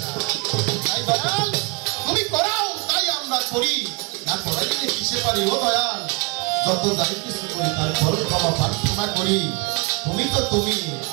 না তাই দয়াল তুমি করাও তাই আমরা করি না করাইলে কিসে পারি ও দয়াল যত যাই কিছু করি তার ফল ক্ষমা প্রার্থনা করি তুমি তো তুমি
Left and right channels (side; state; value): left; quieter; 29.5 dB